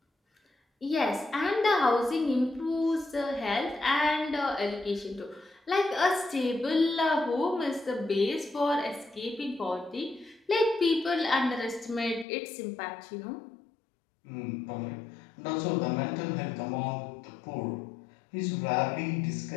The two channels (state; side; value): drops out; right; at 12.2 s